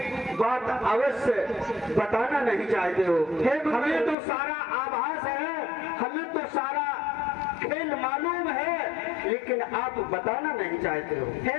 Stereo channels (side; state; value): right; drops out; at 4.2 s